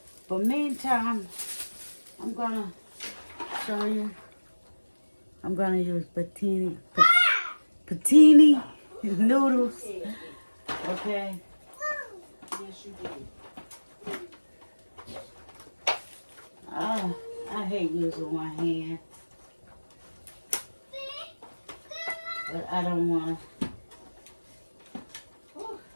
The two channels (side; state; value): both; inverted; correlation -1.00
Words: But meantime, I'm gonna show you. I'm gonna use patini noodles. Okay. Yes, you did. Oh, I hate using one hand. But I don't wanna.